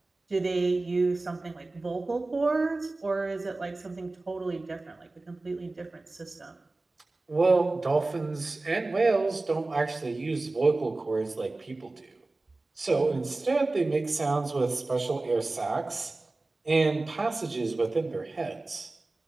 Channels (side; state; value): left; quieter; 3.2 dB